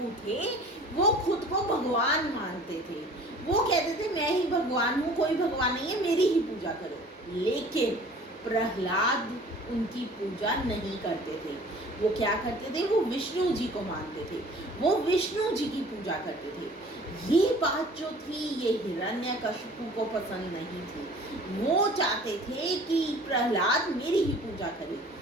थे वो खुद को भगवान मानते थे. वो कहते थे मैं ही भगवान हूँ, कोई भगवान नहीं है, मेरी ही पूजा करो. लेकिन प्रहलाद उनकी पूजा नहीं करते थे. वो क्या करते थे, वो विष्णु जी को मानते थे, वो विष्णु जी की पूजा करते थे. ये बात जो थी ये हिरण्यकशिपु को पसंद नहीं थी. वो चाहते थे कि प्रहलाद मेरी ही पूजा करे.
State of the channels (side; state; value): both; normal; correlation 0.48